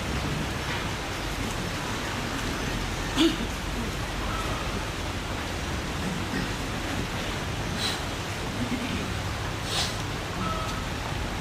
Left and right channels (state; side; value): identical; both; correlation 1.00